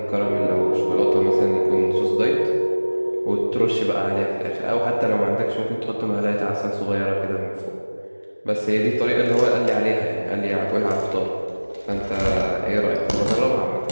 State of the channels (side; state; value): both; inverted; correlation -1.00